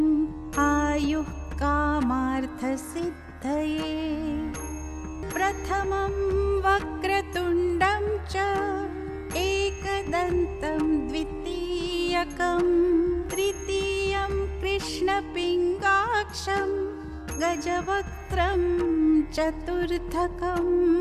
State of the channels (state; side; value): identical; both; correlation 1.00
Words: आयुः कामार्थसिद्धये। प्रथमं वक्रतुण्डं च एकदन्तं द्वितीयकं तृतीयं कृष्णपिङ्गाक्षं गजवक्त्रं चतुर्थकं